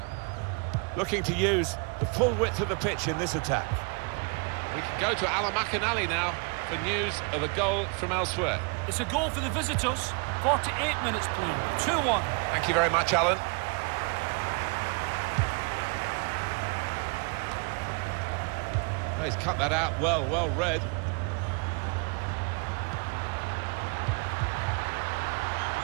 Looking to use the full width of the pitch in this attack. We can go to Alan McInally now for news of a goal from elsewhere. It's a goal for the visitors. 48 minutes played, 2-1. Thank you very much, Alan. Oh, he's cut that out well, well read.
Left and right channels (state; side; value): quieter; left; 34.0 dB